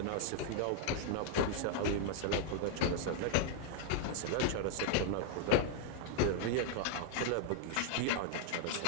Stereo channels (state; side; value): different; both; correlation 0.00